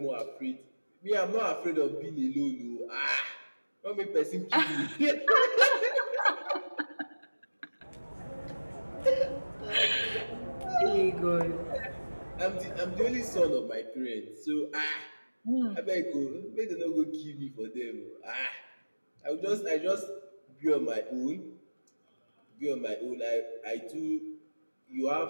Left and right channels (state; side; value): inverted; both; correlation -1.00